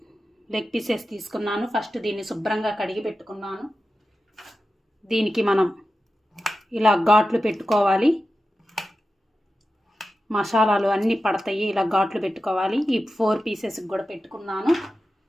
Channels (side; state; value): both; normal; correlation 0.92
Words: లెగ్ పీసెస్ తీసుకున్నాను. ఫస్ట్ దీన్ని శుభ్రంగా కడిగి పెట్టుకున్నాను. దీనికి మనం ఇలా ఘాట్లు పెట్టుకోవాలి. మసాలాలు అన్నీ పడతాయి. ఇలా ఘాట్లు పెట్టుకోవాలి. ఈ 4 పీసెస్కి కూడా పెట్టుకున్నాను.